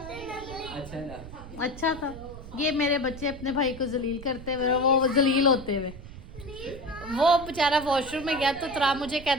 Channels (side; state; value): right; noise; rumble, 14 dB below the sound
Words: अच्छा था। अच्छा था। ये मेरे बच्चे अपने भाई को जलील करते हुए, वो जलील होते हुए, वो बेचारा वॉशरूम में गया तो तरा मुझे